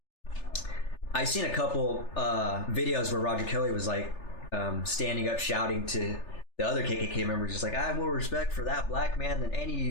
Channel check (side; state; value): right; late; 3.4 ms